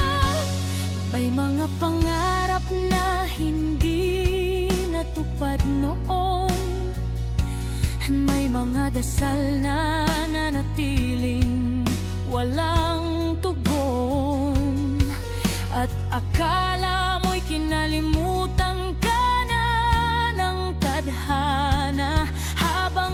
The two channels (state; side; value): identical; both; correlation 1.00